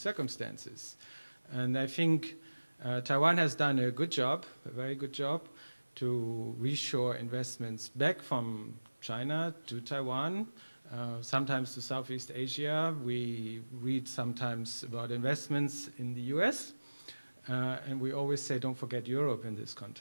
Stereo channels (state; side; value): inverted; both; correlation -1.00